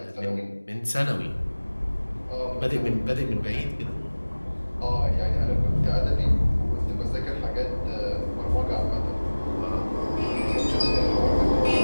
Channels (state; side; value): inverted; both; correlation -1.00